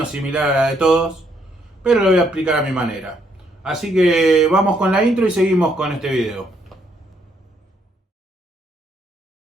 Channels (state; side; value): normal; both; correlation 0.72